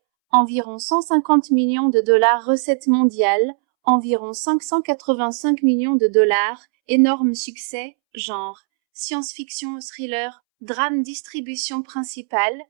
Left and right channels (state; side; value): silent; left; 66 dB below the other